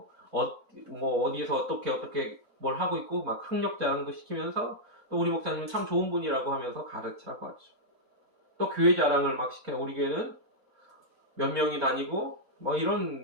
어디에서 어떻게 뭘 하고 있고 막 학력 자랑도 시키면서 또 우리 목사님은 참 좋은 분이라고 하면서 가르치라고 하죠. 또 교회 자랑을 막 시켜요. 우리 교회는 몇 명이 다니고 뭐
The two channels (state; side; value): normal; both; correlation -0.06